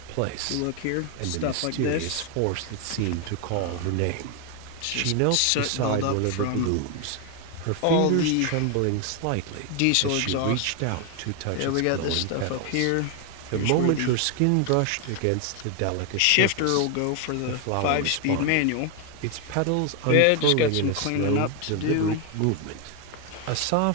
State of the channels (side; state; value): both; different; correlation 0.01